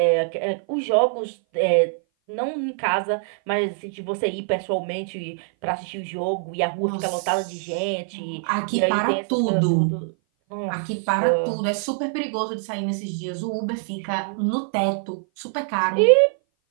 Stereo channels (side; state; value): left; silent; 58 dB below the other